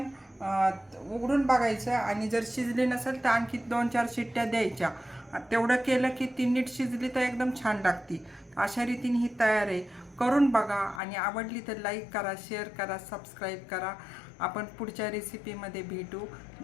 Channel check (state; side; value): drops out; right; at 11.0 s